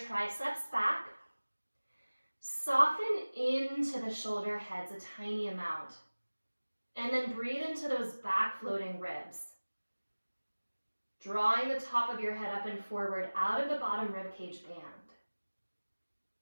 back. Soften into the shoulder heads a tiny amount. And then breathe into those back floating ribs. Drawing the top of your head up and forward out of the bottom ribcage band.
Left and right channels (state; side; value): inverted; both; correlation -1.00